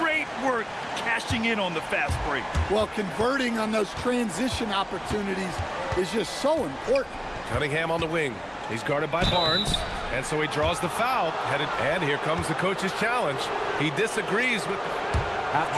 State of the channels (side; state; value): both; identical; correlation 1.00